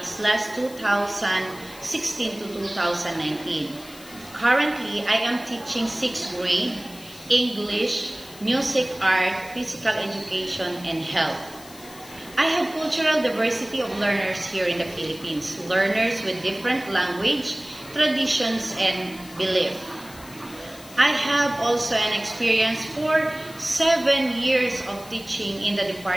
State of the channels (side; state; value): left; noise; hiss, 19 dB below the sound